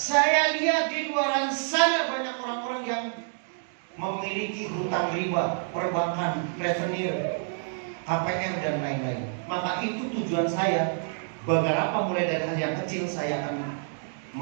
lihat di luar sana banyak orang-orang yang memiliki hutang riba, perbankan, revenue, KPR dan lain-lain. Maka itu tujuan saya. Beberapa mulai dari hal yang kecil saya akan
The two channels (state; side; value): silent; left; digital silence